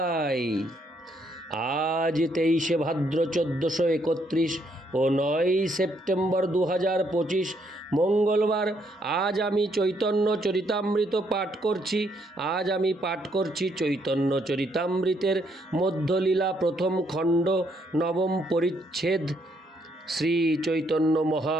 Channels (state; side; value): normal; both; correlation 0.72